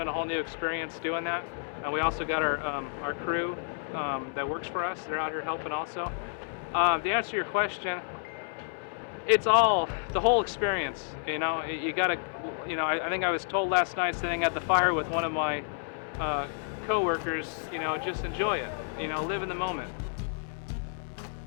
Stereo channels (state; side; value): silent; right; 58 dB below the other